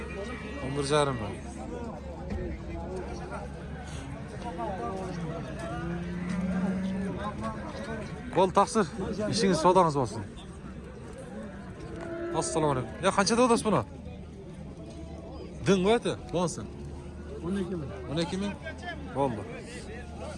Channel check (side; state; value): both; identical; correlation 1.00